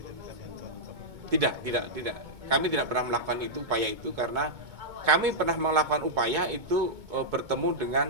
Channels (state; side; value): late; left; 2.2 ms